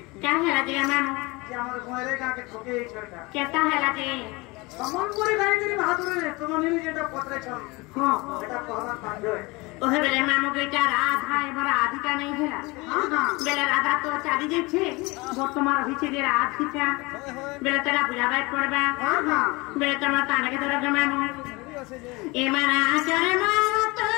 କାहे ହେଲା ଯେ ମାମୁ ଯେ ଆମର ଘରେ ଗାଁକେ ଠକେଇ ଛଟା କେତା ହେଲା ଯେ ସମ୍ବଲପୁରୀ ଗାଈକିରି ବାହାଦୁରରେ ତୁମ ନିନି ଯେଟା ପତ୍ରେଛ ହଁ ସେଟା କହିବା ବାଧ୍ୟ ওহে বেলে মামু বেটা রাধা এবার রাধিকা নেই হেলা বেলে রাধা তো চালি যাচ্ছে বর্তমান হয়েছে যে রাধিকা বেলে তারা বুঝাবাই পড়বা বেলে তোমার তানাকে ধরে মামু এমানা আচারে মারা তো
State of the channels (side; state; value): right; quieter; 24.4 dB